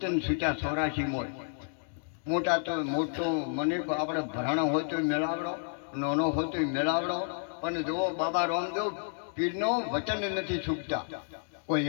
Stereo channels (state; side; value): silent; right; digital silence